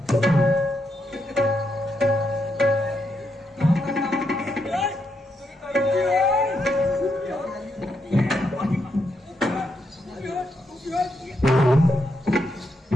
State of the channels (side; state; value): both; normal; correlation 0.81